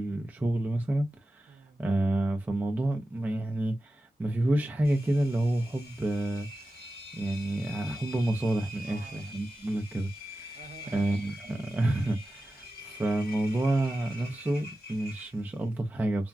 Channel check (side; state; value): both; normal; correlation 0.93